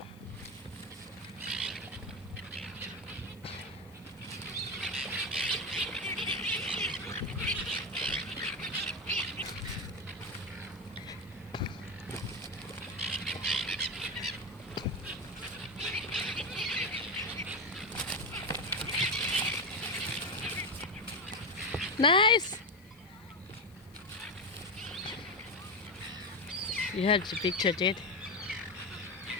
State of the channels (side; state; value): left; noise; hiss, 28 dB below the sound